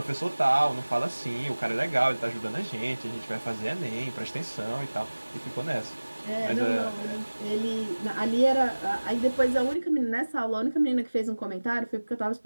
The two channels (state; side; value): inverted; both; correlation -1.00